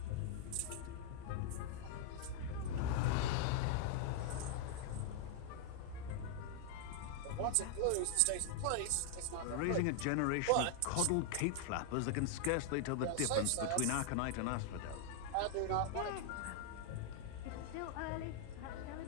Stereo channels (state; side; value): different; both; correlation -0.01